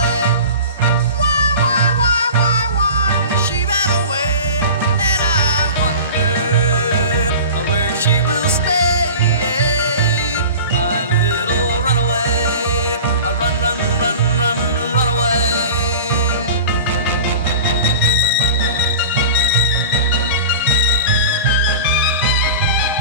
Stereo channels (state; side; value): inverted; both; correlation -0.36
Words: she will stay. My little runaway, run, run, run, run, run away.